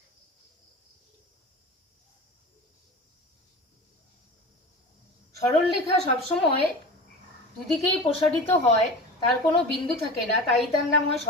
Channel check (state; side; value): normal; both; correlation 0.33